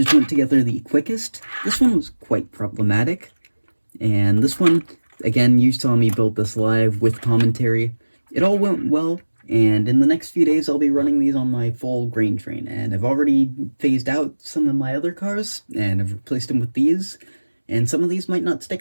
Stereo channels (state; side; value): inverted; both; correlation -1.00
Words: went together the quickest. This one was quite problematic. And this one, again, you saw me build this live with commentary. It all went well. And in the next few days, I'll be running these on my full grain train. And I've already phased out some of my other cars, and I've replaced them with these. And some of these might not